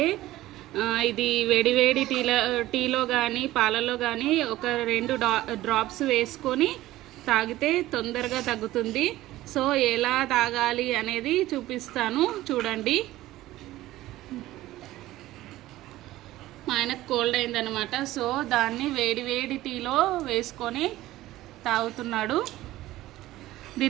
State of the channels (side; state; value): left; quieter; 16.1 dB